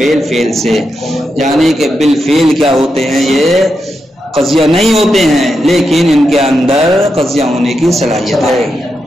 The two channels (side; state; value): both; normal; correlation 0.86